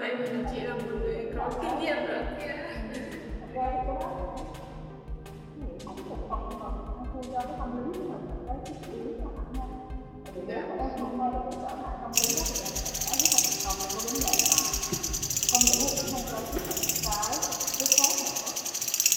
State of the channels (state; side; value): identical; both; correlation 1.00